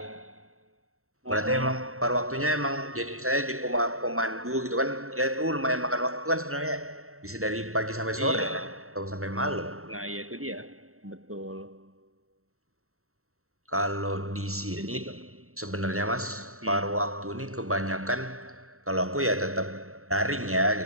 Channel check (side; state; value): left; late; 0.63 ms